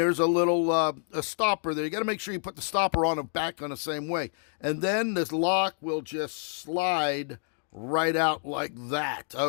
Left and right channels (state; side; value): silent; right; 59 dB below the other